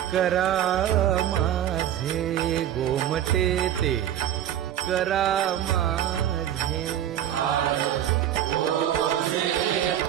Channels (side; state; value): left; quieter; 11.0 dB